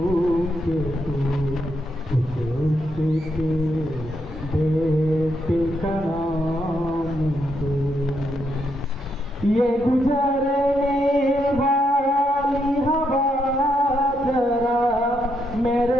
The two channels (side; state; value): both; normal; correlation 0.79